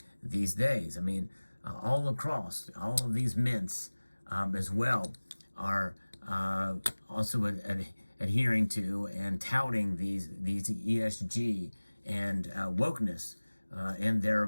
these days. I mean, all across, all of these mints as well are also adhering to and touting these ESG and wokeness in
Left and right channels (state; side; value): inverted; both; correlation -1.00